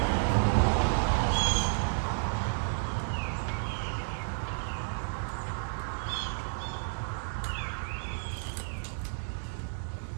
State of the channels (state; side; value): silent; left; digital silence